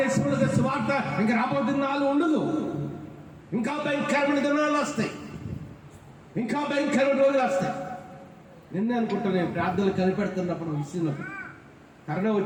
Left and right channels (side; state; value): both; identical; correlation 1.00